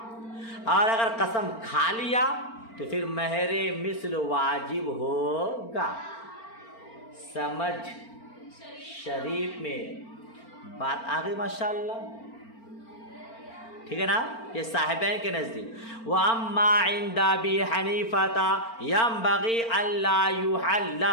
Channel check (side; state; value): right; late; 4.4 ms